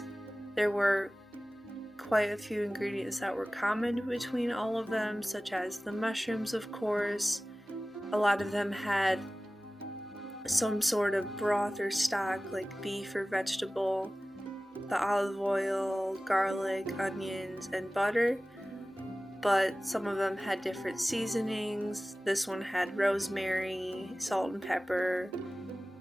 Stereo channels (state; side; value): normal; both; correlation 0.97